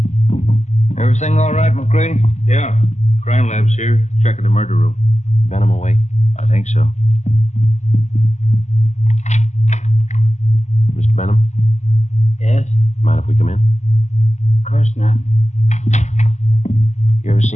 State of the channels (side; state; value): right; late; 0.34 ms